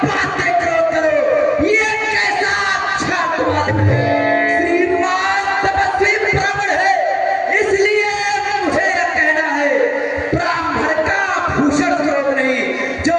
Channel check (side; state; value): both; identical; correlation 1.00